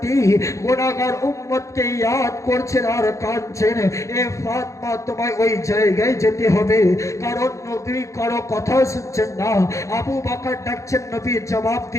গুনাহগার উম্মতকে ইয়াদ করছেন আর কাঁদছেন। এ ফাতিমা, তোমায় ওই জায়গায় যেতে হবে, কারণ নবী কারো কথা শুনছেন না। আবু বকর ডাকছেন, নবী জবাব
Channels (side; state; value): right; late; 0.15 ms